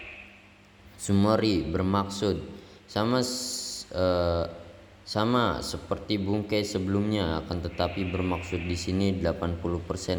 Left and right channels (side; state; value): both; identical; correlation 1.00